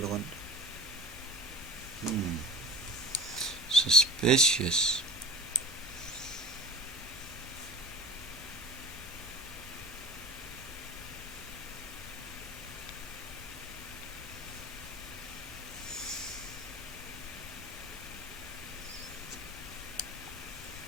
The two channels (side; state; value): both; normal; correlation 0.32